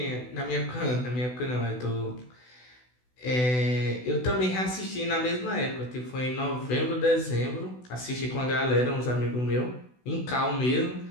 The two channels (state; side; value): late; right; 16 ms